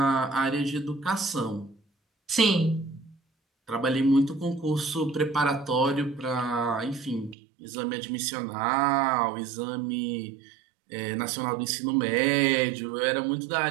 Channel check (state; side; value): drops out; left; at 7.4 s